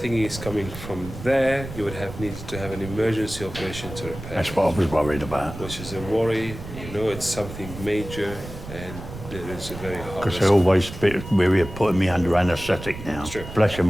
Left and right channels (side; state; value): right; noise; rumble, 12 dB below the sound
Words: it's coming from there, you would have needed to have an emergency operation to repair. That's what I was worried about. Which is a worry. You know, it's something major, and it is a very hard. Because they're always a bit weary of putting me under anaesthetic now. It's true. Bless you,